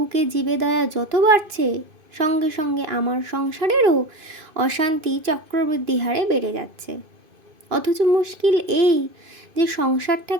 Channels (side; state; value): left; late; 2.5 ms